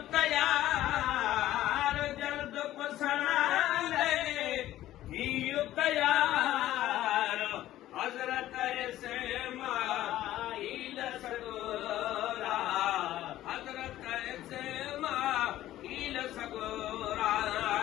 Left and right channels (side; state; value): right; quieter; 14.0 dB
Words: तयार, जल्द कुसनाले थियो तयार, हजरत इस्माइल सगोरा, हजरत इस्माइल सगोरा।